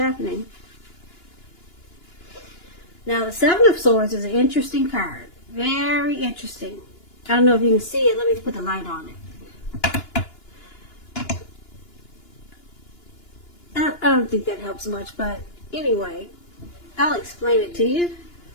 Now, the Seven of Swords is an interesting card. Very interesting. I don't know if you can see it. Let me put the light on it. I don't think that helps much, but anyway, I'll explain it to you.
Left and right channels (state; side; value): late; right; 2.9 ms